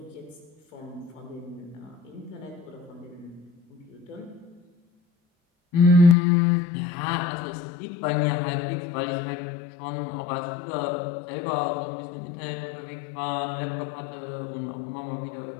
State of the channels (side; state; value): right; drops out; at 6.2 s